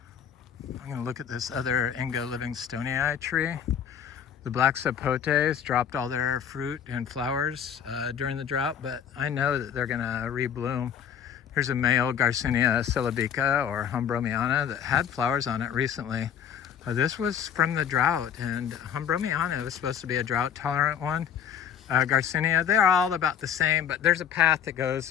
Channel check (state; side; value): quieter; right; 8.5 dB